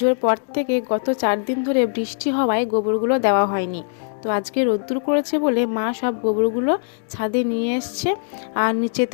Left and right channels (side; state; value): right; silent; digital silence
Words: পর থেকে গত 4 দিন ধরে বৃষ্টি হওয়ায় গোবরগুলো দেওয়া হয়নি। তো আজকে রোদ্দুর করেছে বলে মা সব গোবরগুলো ছাদে নিয়ে এসছে। আর